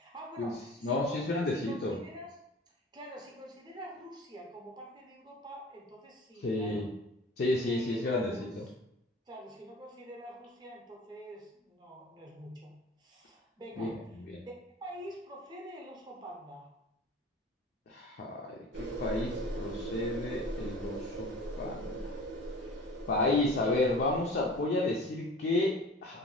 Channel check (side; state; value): both; normal; correlation 0.42